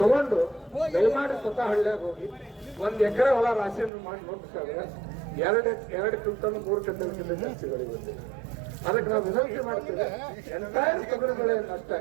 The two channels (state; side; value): drops out; left; at 3.9 s